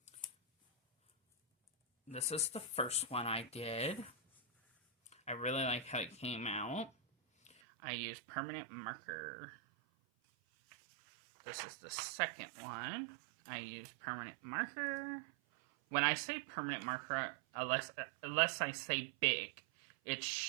This is the first one I did. I really like how it came out. I used permanent marker. This is the second one. I used permanent marker. When I say permanent marker, unless I say big, it's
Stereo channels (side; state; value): left; drops out; at 7.6 s